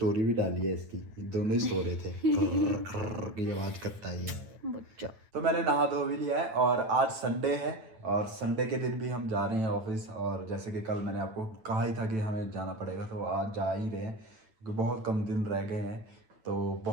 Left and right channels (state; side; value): late; left; 9.2 ms